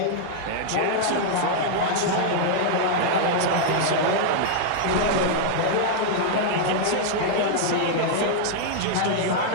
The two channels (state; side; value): different; both; correlation -0.01